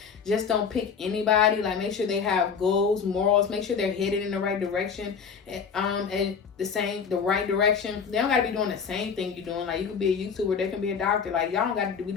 just don't pick anybody. Like, make sure they have goals, morals, make sure they're headed in the right direction, and the right direction. They don't got to be doing the same thing you're doing. Like, you could be a YouTuber, they can be a doctor. Like, y'all don't got to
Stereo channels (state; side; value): quieter; right; 6.3 dB